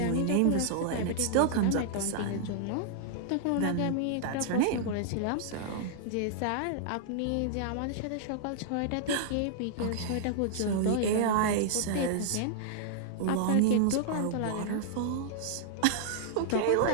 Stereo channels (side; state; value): both; different; correlation -0.01